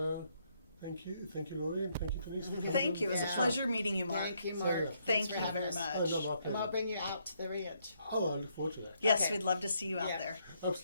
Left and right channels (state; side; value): inverted; both; correlation -0.73